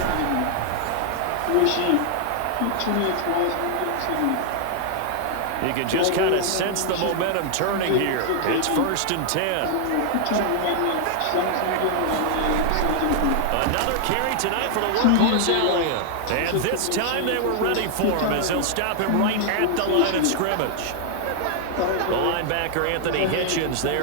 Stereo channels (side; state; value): both; different; correlation 0.00